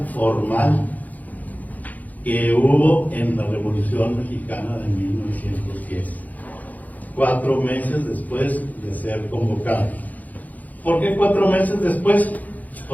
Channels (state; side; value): late; right; 0.079 ms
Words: formal que hubo en la Revolución Mexicana de 1910, 4 meses después de ser convocado. ¿Por qué 4 meses después?